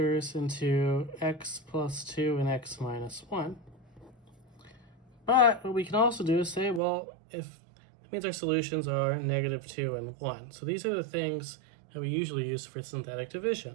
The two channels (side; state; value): left; drops out; at 6.8 s